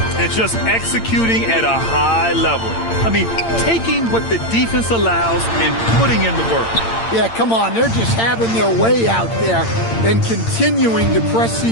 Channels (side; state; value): right; late; 8.8 ms